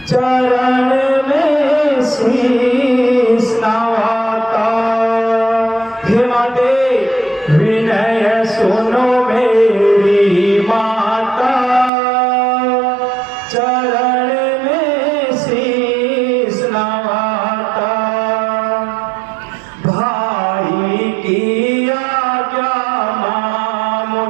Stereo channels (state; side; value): drops out; left; at 11.9 s